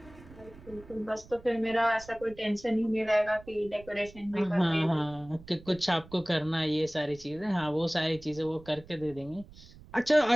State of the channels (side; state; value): right; noise; rumble, 20 dB below the sound